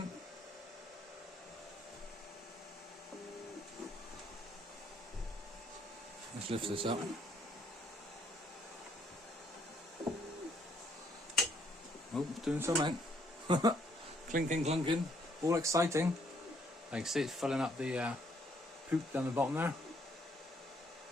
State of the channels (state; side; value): normal; both; correlation 0.69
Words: Let's lift this up. Oh, it's doing something. Clinking, clunking, all exciting. I can see it's filling up the poop down the bottom there.